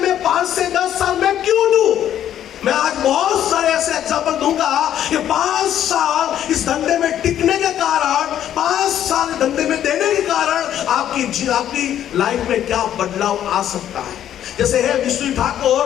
5 से 10 साल में क्यों दूं? मैं आज बहुत सारे ऐसे एग्जाम्पल दूंगा कि 5 साल इस धंधे में टिकने के कारण, 5 साल धंधे में देने के कारण आपकी लाइफ में क्या बदलाव आ सकता है। जैसे है विष्णु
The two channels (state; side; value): quieter; right; 10.8 dB